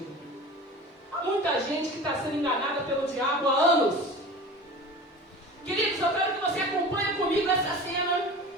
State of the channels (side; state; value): both; normal; correlation 0.36